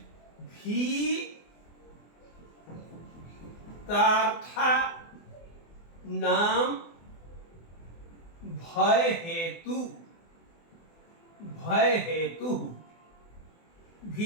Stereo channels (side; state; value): right; late; 24 ms